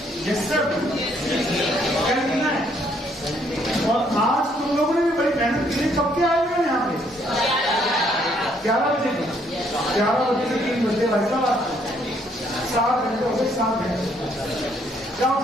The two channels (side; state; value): both; normal; correlation 0.68